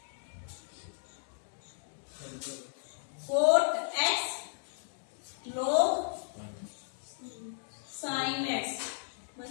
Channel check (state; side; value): silent; right; digital silence